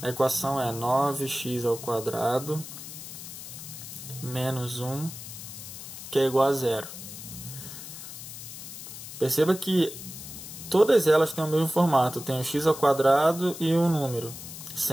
A equação é 9x ao quadrado menos 1, que é igual a zero. Perceba que todas elas têm o mesmo formato. Tem o x ao quadrado e um número,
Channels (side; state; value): left; noise; hiss, 11 dB below the sound